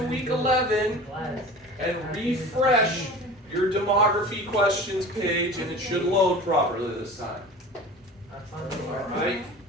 week 11 and refresh your demography questions page, and it should load properly this time. Alright?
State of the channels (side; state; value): both; normal; correlation 0.38